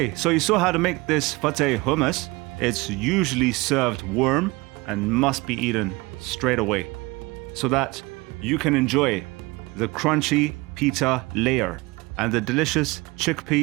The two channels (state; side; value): quieter; left; 23.3 dB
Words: so you saw how to make this Fatteh hummus. It's usually served warm and must be eaten straight away so that you can enjoy the crunchy pita layer and the delicious